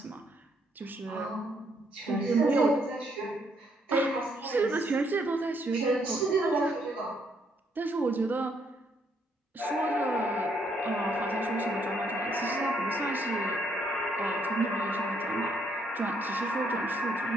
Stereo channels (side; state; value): both; normal; correlation 0.71